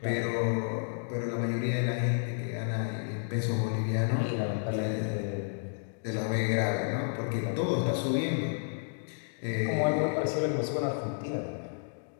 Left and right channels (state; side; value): silent; right; digital silence